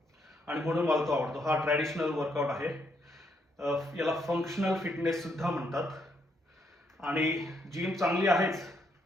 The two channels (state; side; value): normal; both; correlation 0.75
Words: आणि म्हणून मला तो आवडतो. हा ट्रॅडिशनल वर्कआउट आहे. याला फंक्शनल फिटनेस सुद्धा म्हणतात. आणि जिम चांगली आहेच,